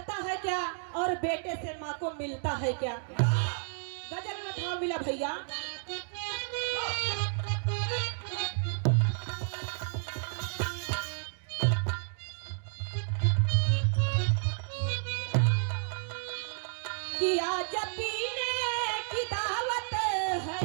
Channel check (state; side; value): silent; left; digital silence